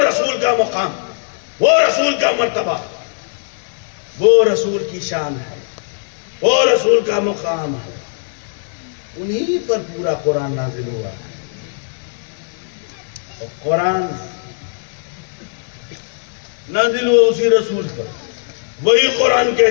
رسول کا مقام، وہ رسول کا مرتبہ، وہ رسول کی شان ہے، وہ رسول کا مقام ہے. انہی پر پورا قرآن نازل ہوا. اور قرآن نازل ہوا اسی رسول پر. وہی قرآن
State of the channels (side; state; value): right; silent; 56 dB below the other